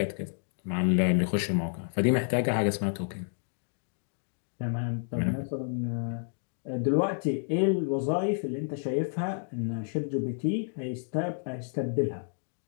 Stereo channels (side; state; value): right; silent; digital silence